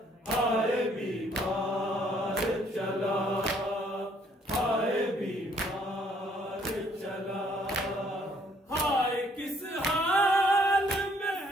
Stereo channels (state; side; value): normal; both; correlation 0.64